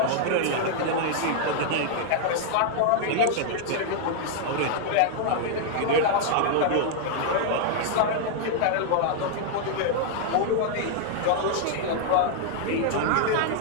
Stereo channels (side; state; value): both; different; correlation -0.01